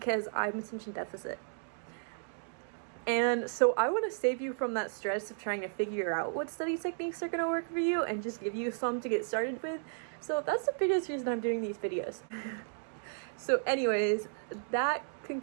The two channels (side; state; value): left; silent; digital silence